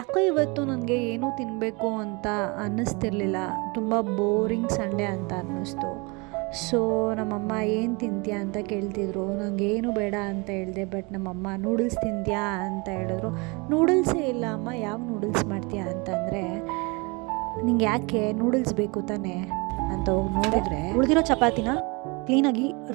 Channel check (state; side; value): quieter; left; 28.3 dB